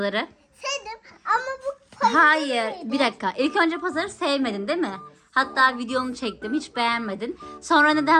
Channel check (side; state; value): both; identical; correlation 1.00